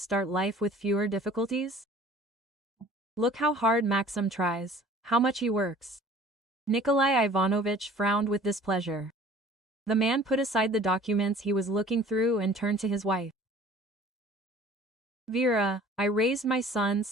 life with fewer difficulties? Look how hard Maxim tries, how much he works. Nikolai Ivanovich frowned with displeasure. The man put aside the documents he was looking through and turned to his wife. Vera, I raised my son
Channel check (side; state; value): both; normal; correlation 0.49